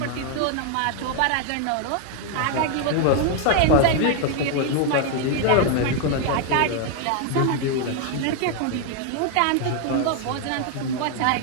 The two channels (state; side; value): different; both; correlation 0.00